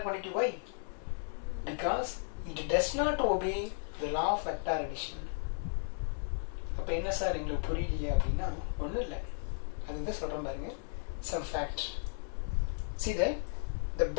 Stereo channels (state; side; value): silent; right; 55 dB below the other